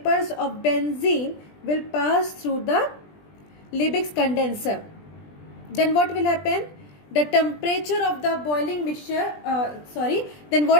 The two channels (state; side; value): late; right; 20 ms